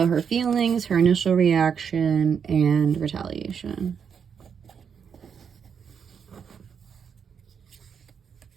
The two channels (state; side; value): quieter; left; 7.0 dB